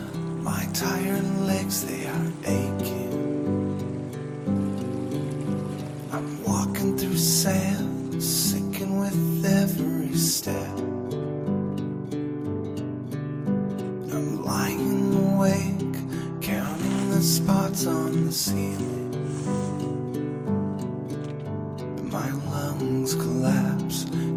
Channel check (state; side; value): identical; both; correlation 1.00